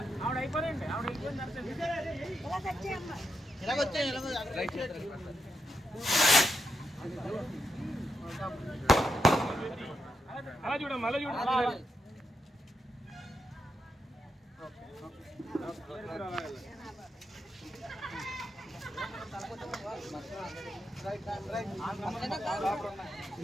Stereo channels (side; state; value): both; normal; correlation 0.84